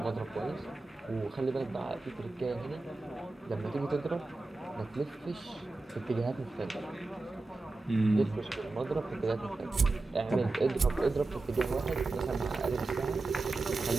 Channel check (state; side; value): quieter; left; 3.3 dB